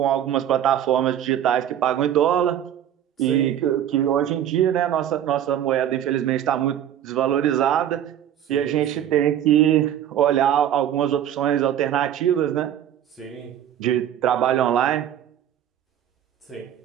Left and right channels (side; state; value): left; quieter; 10.6 dB